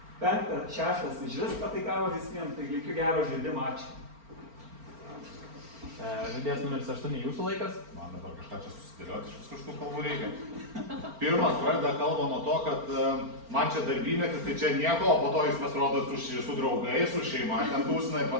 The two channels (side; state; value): left; late; 4.4 ms